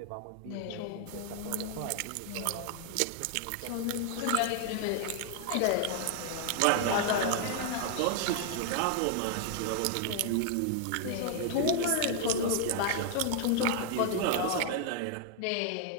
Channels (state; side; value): different; both; correlation 0.00